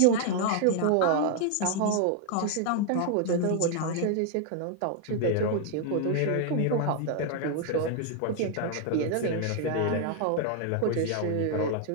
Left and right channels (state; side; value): different; both; correlation 0.00